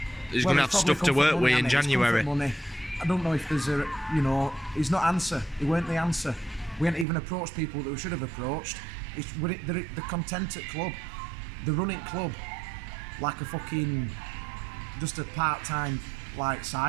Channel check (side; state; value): left; drops out; at 7.1 s